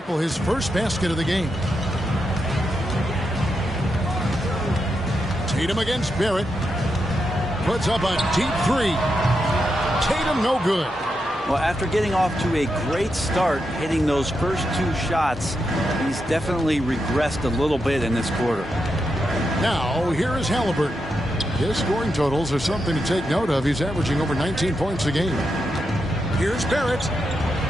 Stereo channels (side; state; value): both; normal; correlation 0.85